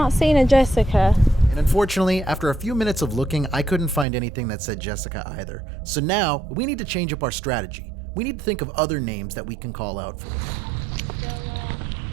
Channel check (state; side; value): drops out; left; at 4.0 s